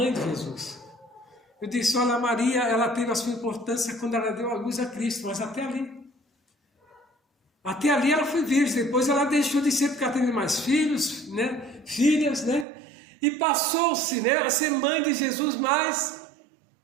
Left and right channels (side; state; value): left; drops out; at 12.7 s